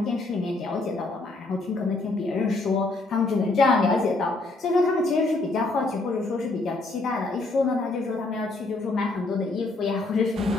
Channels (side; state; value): right; quieter; 3.2 dB